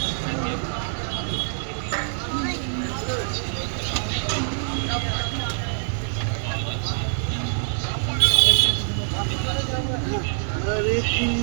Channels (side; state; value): left; silent; digital silence